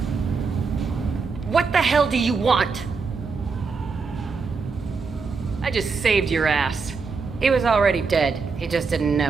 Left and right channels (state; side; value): quieter; left; 4.8 dB